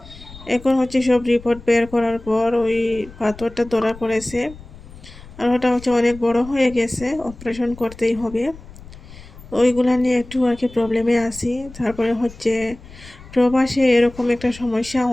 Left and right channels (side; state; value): left; noise; rumble, 18 dB below the sound